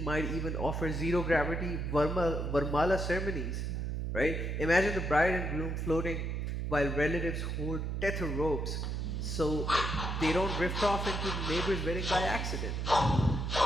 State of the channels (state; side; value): noise; right; hum, 2 dB below the sound